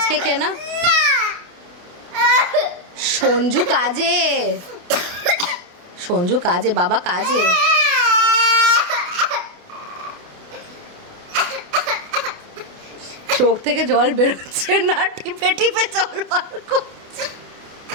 খেয়ে নাও। সঞ্জু কাজে, সঞ্জু কাজে, বাবা কাজে। চোখ থেকে জল বেরোচ্ছে না, টিপে টিপে জল বার করছে।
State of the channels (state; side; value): late; left; 28 ms